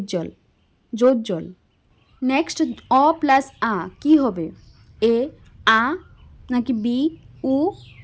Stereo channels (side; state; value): both; identical; correlation 1.00